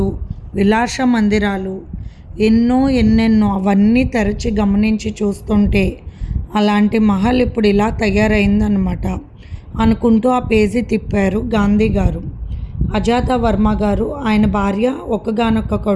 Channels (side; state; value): both; identical; correlation 1.00